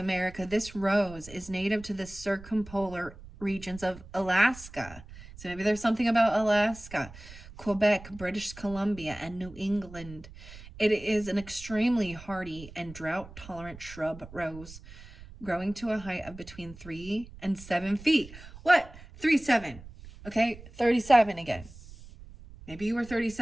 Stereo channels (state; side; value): noise; right; rumble, 17 dB below the sound